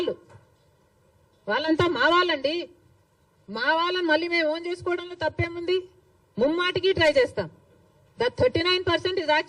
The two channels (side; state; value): both; identical; correlation 1.00